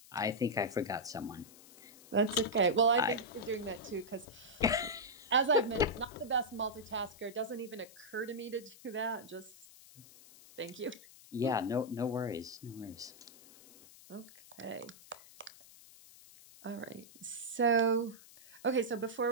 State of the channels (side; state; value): left; noise; hiss, 21 dB below the sound